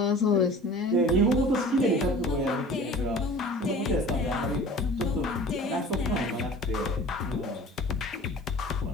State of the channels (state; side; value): normal; both; correlation 0.42